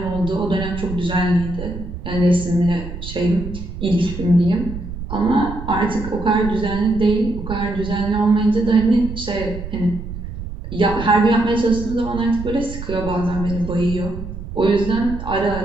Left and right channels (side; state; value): right; noise; rumble, 9 dB below the sound